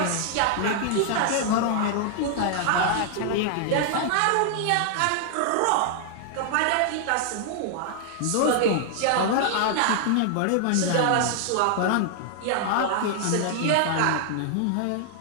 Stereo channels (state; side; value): different; both; correlation 0.00